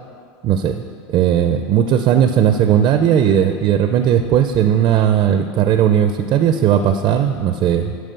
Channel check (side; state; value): left; quieter; 8.9 dB